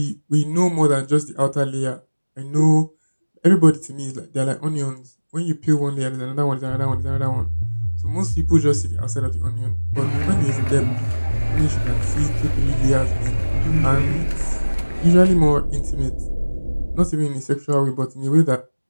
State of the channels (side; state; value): both; inverted; correlation -1.00